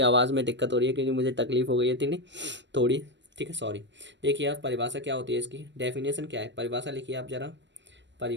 आवाज़ में दिक्कत हो रही है क्योंकि मुझे तकलीफ़ हो गई है थी थोड़ी। ठीक है, सॉरी। देखिए आप, परिभाषा क्या होती है इसकी, डेफिनेशन क्या है, परिभाषा लिखिए आप ज़रा।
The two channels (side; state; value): left; late; 0.53 ms